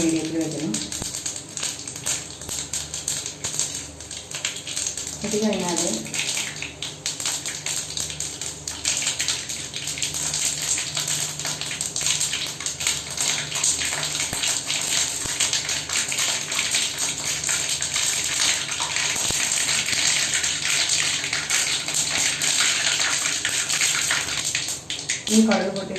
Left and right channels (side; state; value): both; identical; correlation 1.00